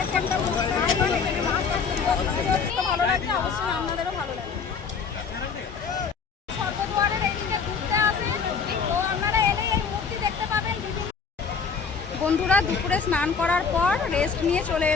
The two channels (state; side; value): quieter; right; 5.7 dB